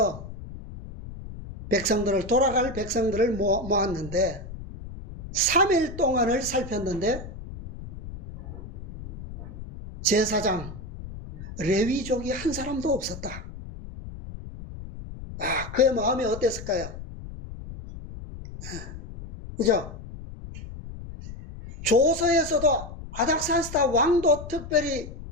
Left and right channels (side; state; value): left; noise; rumble, 12 dB below the sound